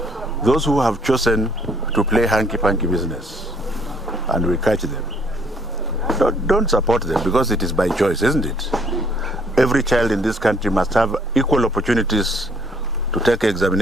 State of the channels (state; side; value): normal; both; correlation 0.64